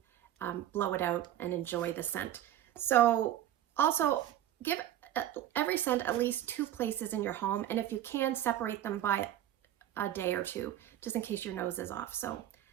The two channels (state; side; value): quieter; left; 12.2 dB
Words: blow it out and enjoy the scent. So also give every scent at least 2 places in your home. And if you can, separate them by a day or 2, just in case your nose is off. So